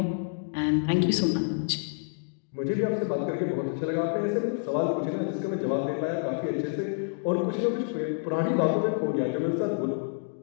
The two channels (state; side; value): silent; right; digital silence